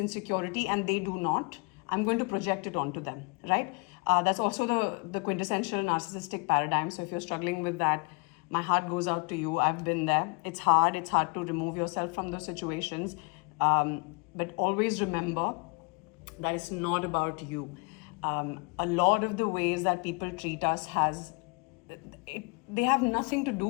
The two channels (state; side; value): quieter; right; 31.9 dB